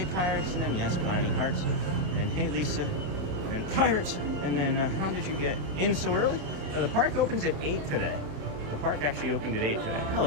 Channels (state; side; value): late; left; 27 ms